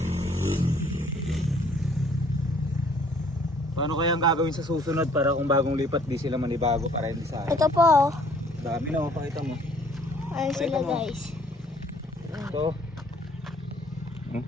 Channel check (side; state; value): both; normal; correlation 0.59